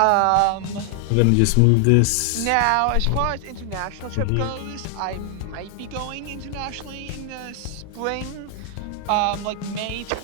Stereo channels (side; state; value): both; different; correlation 0.00